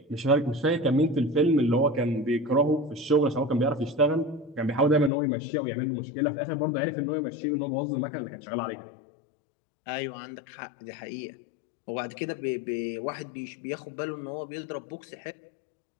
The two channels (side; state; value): right; drops out; at 5.1 s